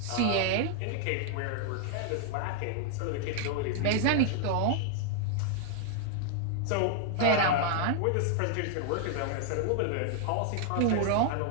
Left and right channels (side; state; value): both; different; correlation 0.00